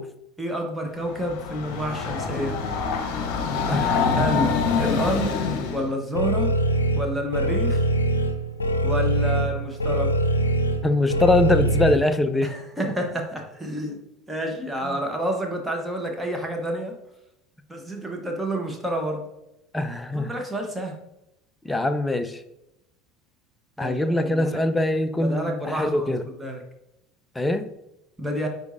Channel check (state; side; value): normal; both; correlation 0.31